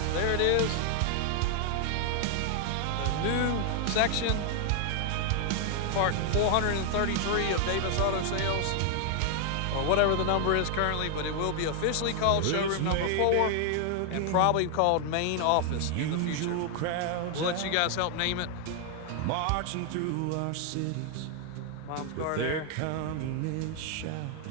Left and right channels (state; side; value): different; both; correlation 0.00